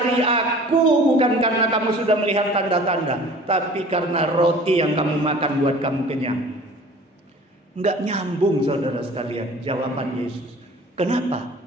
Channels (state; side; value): normal; both; correlation 0.46